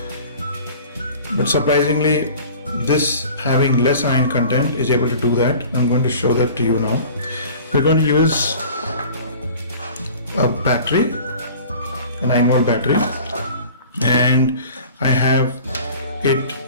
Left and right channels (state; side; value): inverted; both; correlation -0.44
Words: but surprisingly this having less iron content is able to do that. I'm going to show that to you now. We're going to use a battery, a 9-volt battery, and I have it